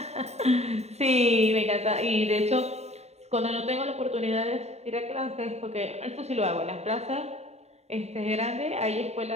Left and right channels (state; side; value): late; left; 0.31 ms